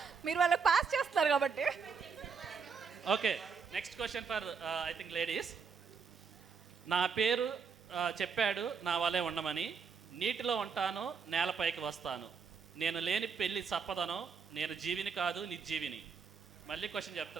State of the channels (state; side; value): quieter; left; 5.8 dB